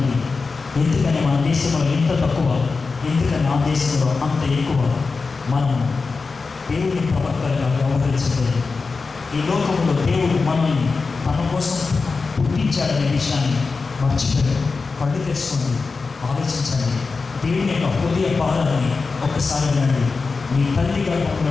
ఎందుకని మన దేశంలో ఇంత తక్కువ? ఎందుకని ఆ దేశంలో అంత ఎక్కువ? మనం దేవుని ప్రవక్తలుగా వ్యవహరించలేదు. ఈ లోకంలో దేవుడు మనల్ని తన కోసం పుట్టించాడనే విషయాన్ని మర్చిపోయాడు. కళ్ళు తెచ్చుకోండి, ఆలోచించండి. దేవుని యొక్క హృదయ భారాన్ని ఒక్కసారి వినండి. నీ తల్లి గర్భంలో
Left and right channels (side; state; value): right; quieter; 4.3 dB